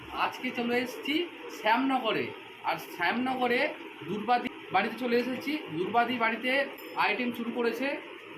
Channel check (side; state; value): both; identical; correlation 1.00